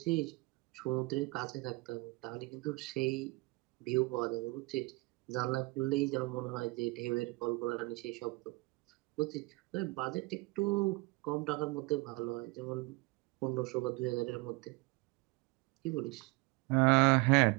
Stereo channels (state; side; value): quieter; left; 24.8 dB